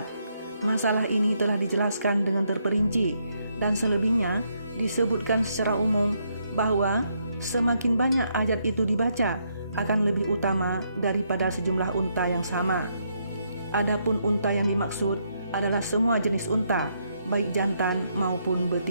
Masalah ini telah dijelaskan dengan terperinci, dan selebihnya disebutkan secara umum bahwa semakin banyak ayat itu dibaca akan lebih utama daripada sejumlah unta yang sama. Adapun unta yang dimaksud adalah semua jenis unta, baik jantan maupun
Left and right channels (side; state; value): both; inverted; correlation -0.76